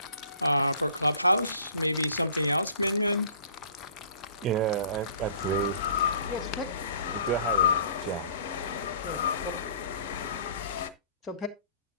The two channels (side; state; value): both; inverted; correlation -0.52